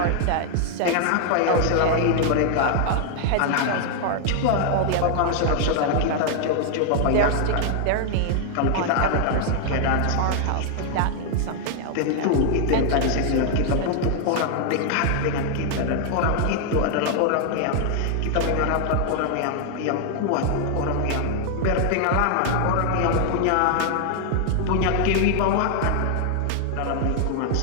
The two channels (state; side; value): different; both; correlation 0.00